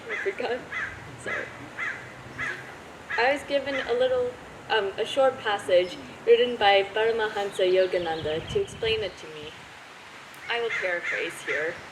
I forgot. Sorry. I was given a short passage written by Paramahansa Yogananda to explain it to me. I will paraphrase here.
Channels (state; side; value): identical; both; correlation 1.00